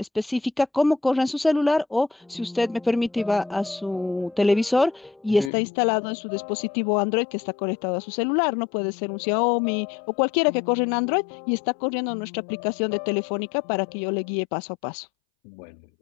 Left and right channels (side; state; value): right; drops out; at 5.5 s